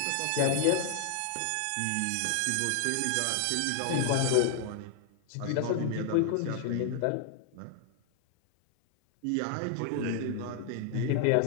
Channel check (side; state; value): both; different; correlation 0.00